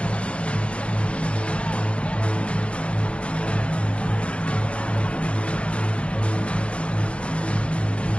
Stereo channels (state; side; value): late; right; 0.060 ms